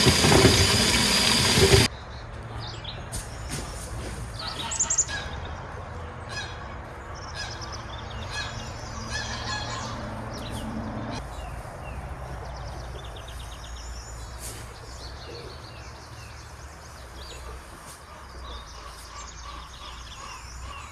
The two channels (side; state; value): both; identical; correlation 1.00